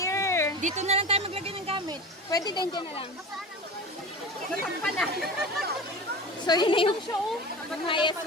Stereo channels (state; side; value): normal; both; correlation 0.32